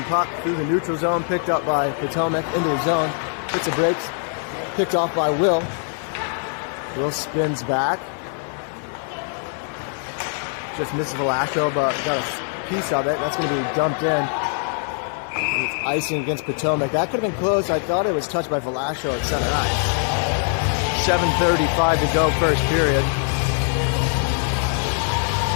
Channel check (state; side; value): silent; right; 55 dB below the other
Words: puck through the neutral zone, picked up by Potomac into the zone. Hits the brakes, picked off by Will. Will spins back. Just misses Velasco, but got a piece of it. That's going to be dumped in. It's icing against Potomac. That could have been close. I thought it was touched by Velasco at center ice. 7:35 to go, first period.